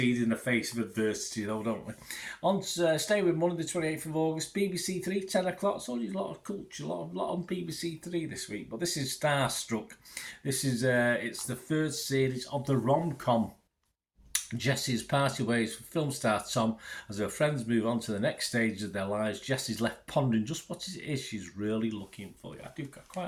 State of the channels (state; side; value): identical; both; correlation 1.00